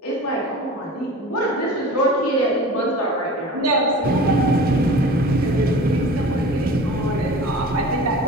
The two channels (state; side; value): normal; both; correlation 0.39